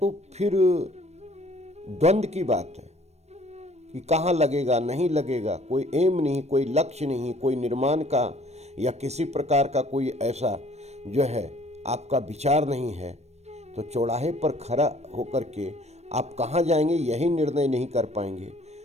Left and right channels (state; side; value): late; left; 0.31 ms